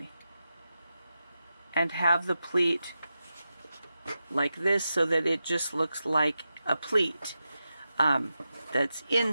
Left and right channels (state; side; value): inverted; both; correlation -0.90